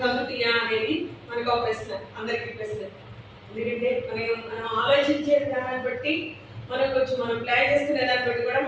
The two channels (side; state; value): both; identical; correlation 1.00